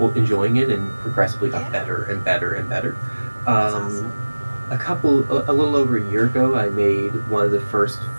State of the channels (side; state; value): both; inverted; correlation -1.00